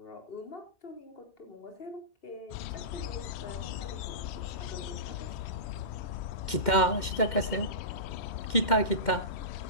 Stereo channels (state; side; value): late; right; 2.1 ms